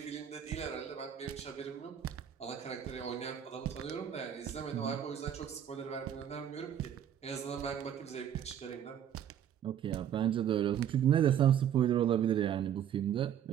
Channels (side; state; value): left; quieter; 9.6 dB